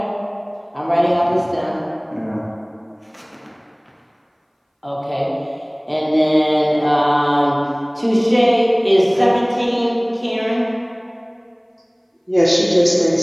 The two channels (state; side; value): identical; both; correlation 1.00